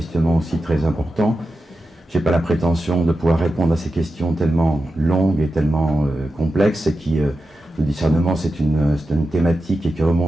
aussi très importants. Je n'ai pas la prétention de pouvoir répondre à ces questions tellement longues et tellement complexes, et qui, le discernement, c'est une thématique et qui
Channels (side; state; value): both; normal; correlation 0.91